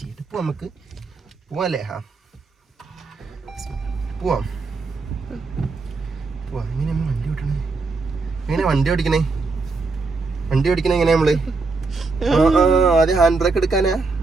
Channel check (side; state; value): left; quieter; 4.0 dB